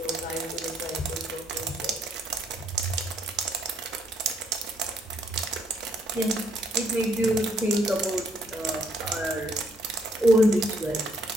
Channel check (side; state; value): both; normal; correlation 0.69